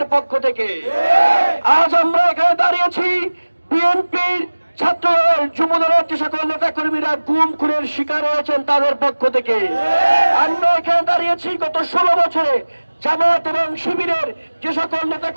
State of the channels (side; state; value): both; inverted; correlation -1.00